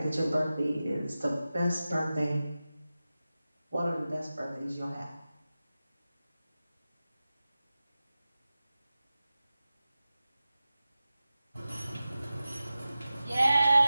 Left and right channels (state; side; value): inverted; both; correlation -0.95